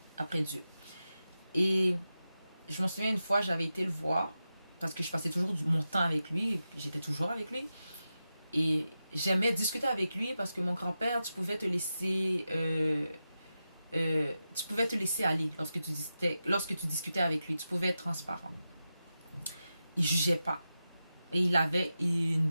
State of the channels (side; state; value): both; inverted; correlation -0.91